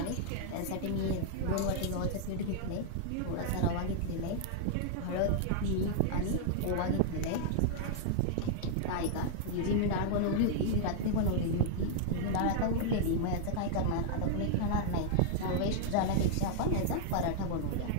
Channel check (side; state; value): both; different; correlation -0.01